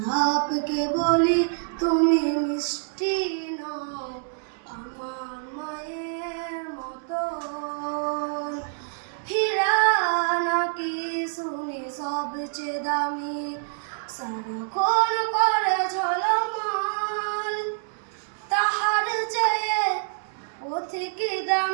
বলি তুমি মিষ্টি নও আমার মায়ের মতন। হীরা নাকি শুনি সবচেয়ে দামি, সারাক্ষণ করে ঝলমল, তাহার চেয়ে অধিক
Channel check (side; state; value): left; silent; digital silence